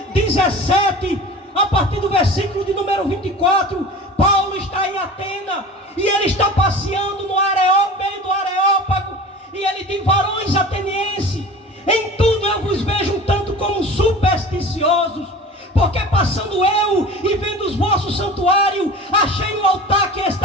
17, a partir do versículo de número 24, Paulo está em Atenas, e ele está passeando no meio do Areópago, e ele diz: varões atenienses, em tudo eu vos vejo um tanto como supersticiosos, porque passando eu e vendo os vossos santuários, achei no altar que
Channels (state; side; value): normal; both; correlation 0.37